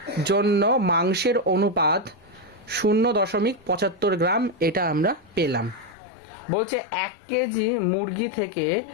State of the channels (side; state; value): right; drops out; at 6.0 s